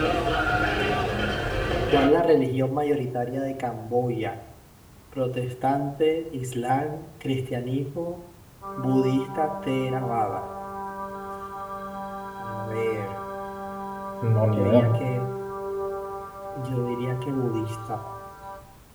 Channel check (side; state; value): both; identical; correlation 1.00